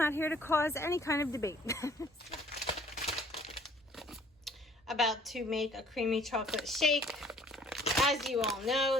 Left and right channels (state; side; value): normal; both; correlation 0.56